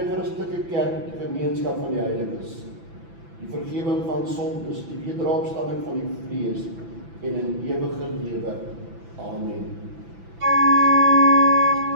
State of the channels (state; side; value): late; left; 6.0 ms